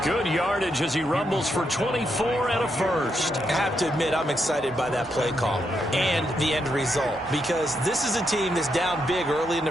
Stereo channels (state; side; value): normal; both; correlation 0.81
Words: Good yardage as he rumbles for 24 and a first. I have to admit, I'm excited by that play call and the end result, because this is a team that's down big early in